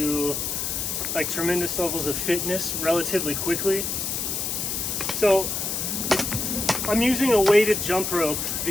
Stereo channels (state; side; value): noise; left; hiss, 2 dB below the sound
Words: like tremendous levels of fitness relatively quickly. So I'm using a weighted jump rope